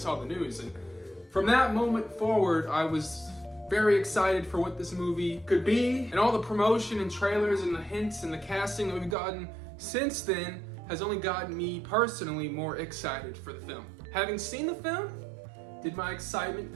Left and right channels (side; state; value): left; drops out; at 9.2 s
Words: the news. And from that moment forward, I was very excited for what this movie could be. And all the promotion and trailers and the hints and the casting that we've gotten since then has only gotten me personally more excited for the film. Having seen the film, did my excitement